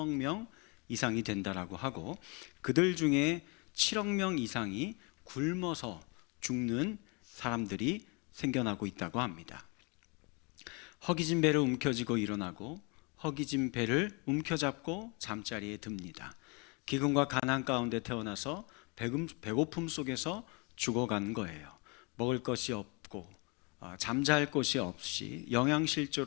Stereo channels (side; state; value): right; quieter; 31.5 dB